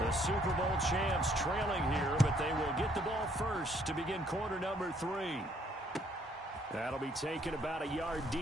the Super Bowl champs trailing here, but they will get the ball first to begin quarter number 3. That'll be taken about a yard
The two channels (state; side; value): normal; both; correlation 0.65